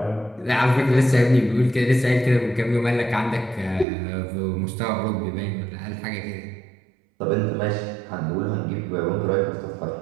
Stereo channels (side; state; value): left; drops out; at 3.9 s